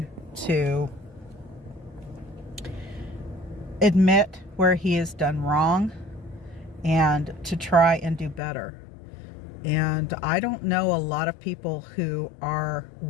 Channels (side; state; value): right; drops out; at 8.4 s